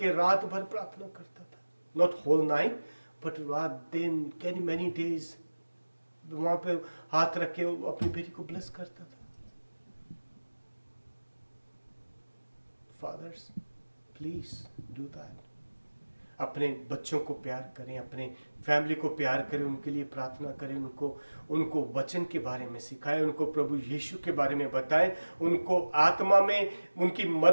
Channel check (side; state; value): both; inverted; correlation -1.00